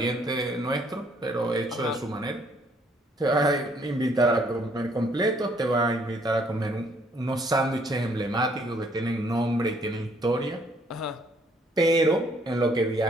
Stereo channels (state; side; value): normal; both; correlation 0.65